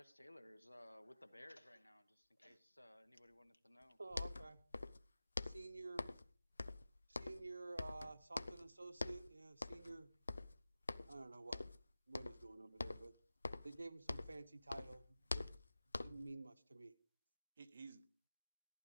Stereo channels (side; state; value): both; inverted; correlation -0.96